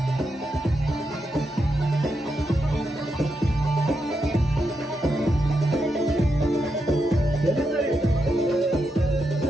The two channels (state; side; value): normal; both; correlation 0.84